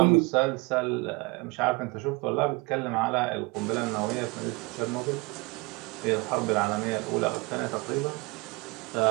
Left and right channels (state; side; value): quieter; left; 26.7 dB